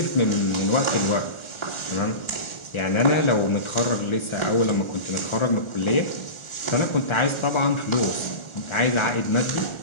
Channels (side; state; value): right; late; 1.4 ms